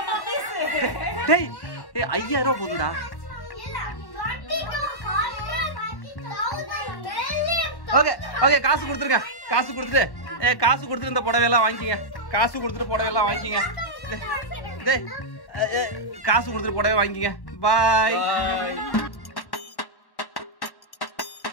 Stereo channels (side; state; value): right; late; 1.1 ms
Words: டேய் 5000 ரூபா போதுடா. ஓகே ஓகே, காசு கொடுத்துருங்க. காசு கொடுத்துட்டு இந்த புடவையெல்லாம் வாங்கிக்கிங்க. காசு கொடுத்துட்டு புடவையெல்லாம் வாங்கிக்கிங்க. காசு கொடுத்துட்டு புடவை வாங்கிக்கிங்க. பாய்.